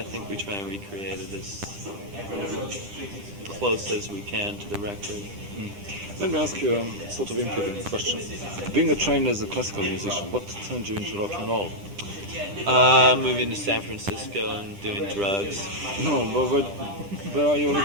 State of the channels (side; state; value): left; late; 10 ms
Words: think we try and recreate it as close as we can to the record. Let me ask you a sort of important question. Being trained as a classical musician, what turned you into rock and roll? Moving to San Francisco and doing drugs. No, but where are you